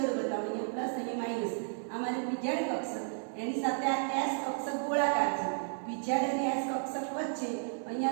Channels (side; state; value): left; silent; digital silence